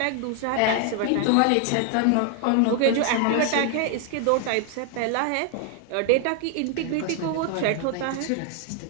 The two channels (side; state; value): both; different; correlation 0.00